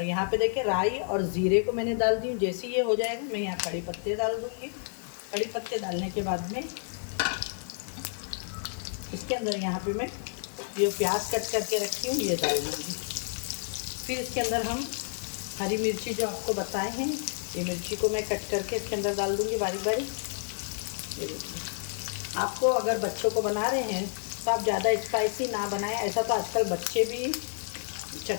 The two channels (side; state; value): right; silent; 58 dB below the other